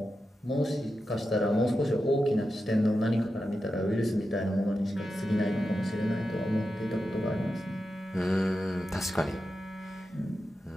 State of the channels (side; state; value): both; normal; correlation 0.90